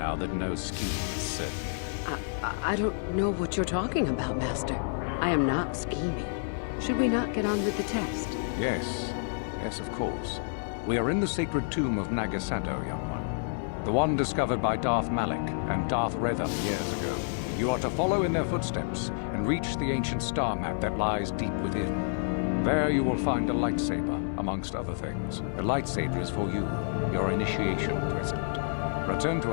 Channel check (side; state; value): right; silent; digital silence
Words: that no scheme is certain. I don't know what you're talking about, Master. I am not scheming. Should we not get on with the test? Yes. Yes, of course. We are in the sacred tomb of Nagasado, young one. The one discovered by Darth Malak and Darth Revan years ago. You are to follow in their footsteps and reach the ancient star map that lies deep within. There you will find a lightsaber, amongst other things. The lightsaber is for you, your initiation present. Return